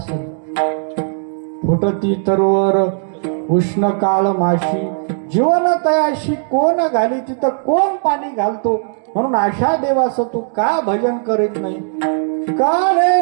फुटती तरवर उष्ण काळ माशी, जीवन तयाशी कोण घाली, तिथं कोण पाणी घालतो? म्हणून अशा देवाचं तू का भजन करीत नाही? काळे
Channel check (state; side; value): silent; left; digital silence